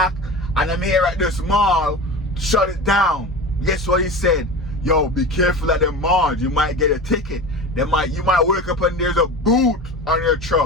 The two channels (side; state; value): both; normal; correlation 0.31